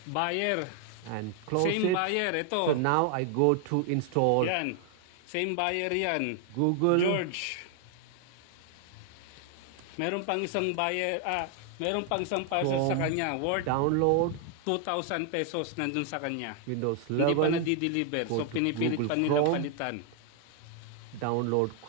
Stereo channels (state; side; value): different; both; correlation 0.00